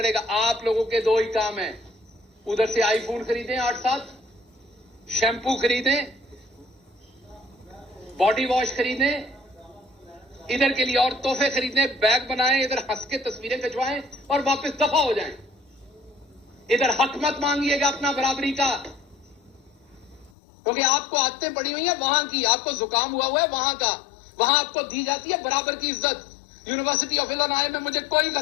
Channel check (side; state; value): right; drops out; at 20.3 s